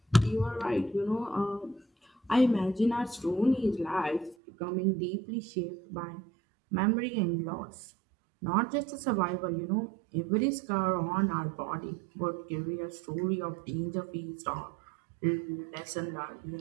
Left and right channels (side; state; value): left; drops out; at 4.4 s